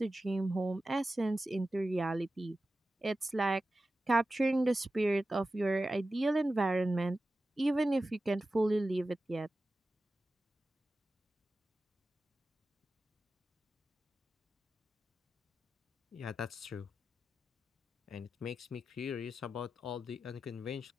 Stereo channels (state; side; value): normal; both; correlation 0.93